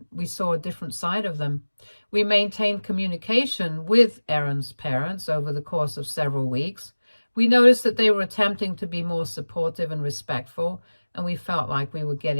we saw a different side of them. We maintained communication with Aaron's parents over the course of several weeks. We noticed that they were attempting to be more supportive and respectful, and we felt like we were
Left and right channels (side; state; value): both; inverted; correlation -1.00